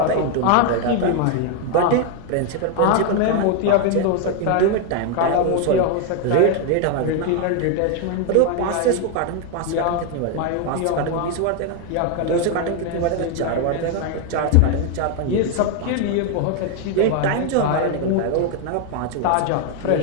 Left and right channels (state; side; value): different; both; correlation 0.01